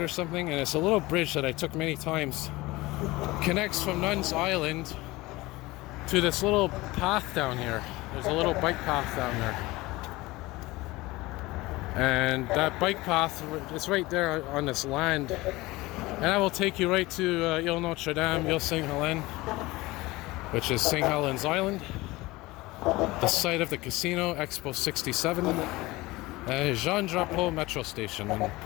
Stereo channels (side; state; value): right; quieter; 20.4 dB